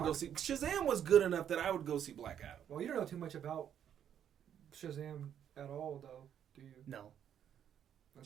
go see Shazam was good enough that I would go see Black Adam. Well, you don't know too much about Shazam at all, though, do you? No.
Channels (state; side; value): quieter; left; 9.4 dB